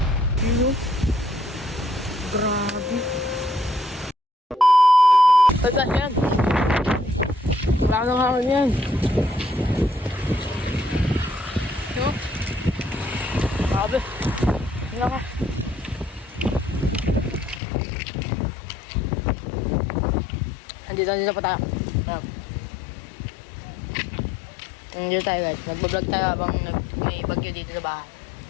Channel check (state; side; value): drops out; right; at 17.6 s